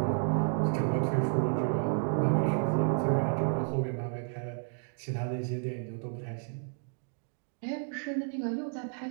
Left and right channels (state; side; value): silent; left; 57 dB below the other